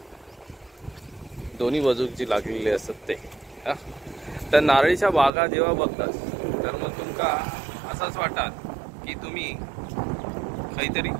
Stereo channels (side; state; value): left; drops out; at 5.3 s